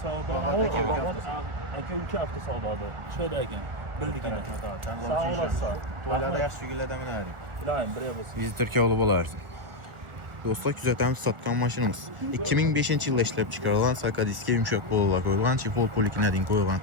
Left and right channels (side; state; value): left; late; 1.4 ms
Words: Aka Avtosavdo'da. Şöyleyken. Bildik yine. Sağ olasın. Toylarda yaxşı gülədə minərik. İlahim, buraya basın. Bizi Türkiye olub olardı. Dostlar, küzətəmiz satqan maşınımız 2005-ci ildə işləb çıxarılan Sakadiski yumşaq bolular qoyulan, çifol polikinədin qoyulan